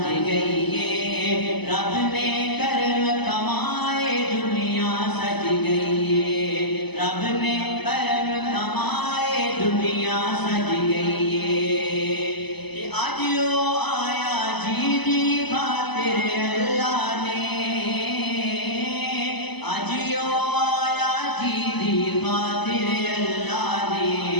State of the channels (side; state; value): right; late; 0.99 ms